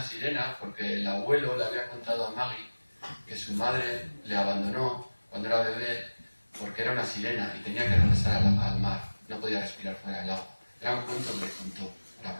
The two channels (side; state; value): both; inverted; correlation -1.00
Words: sirena porque el abuelo le había contado a Maggie que su madre le abandonó cuando era bebé porque era una sirena y tenía que regresar al mar. No podía respirar fuera del agua. Era un cuento que le contó para